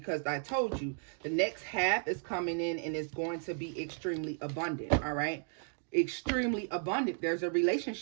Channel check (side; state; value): left; silent; 55 dB below the other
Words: I told you the next half is coming in and it's going to be extremely abundant, all right? Extremely abundant. There's a